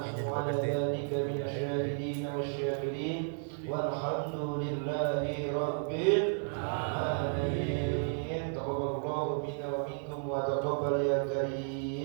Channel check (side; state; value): left; silent; 56 dB below the other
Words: 'ala dhalika minasyahidin wasyakirin walhamdulillahi rabbil alamin. Taqabbalallahu minna wa minkum wa taqabbal ya